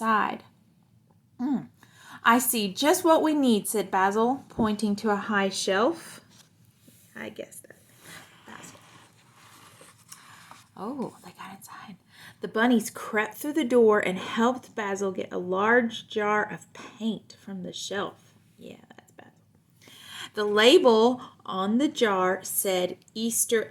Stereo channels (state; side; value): identical; both; correlation 1.00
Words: I see just what we need, said Basil, pointing to a high shelf. I guess that. Basil. Oh, they got inside. The bunnies crept through the door and helped Basil get a large jar of paint from the shelf. Yeah, that's Basil. The label on the jar said Easter